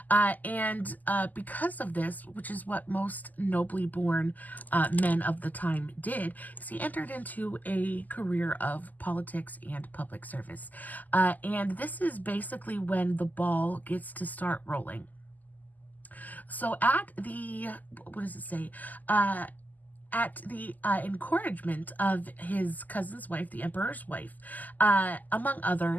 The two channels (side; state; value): right; late; 0.082 ms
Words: And because of this, which is what most nobly born men of the time did, is he entered into a career of politics and public service. And this is basically when the ball gets to start rolling. So at the, what does it say? At the encouragement of his cousin's wife, the emperor's wife, among